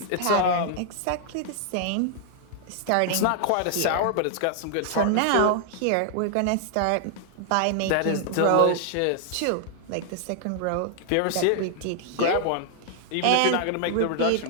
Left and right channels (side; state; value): both; different; correlation 0.00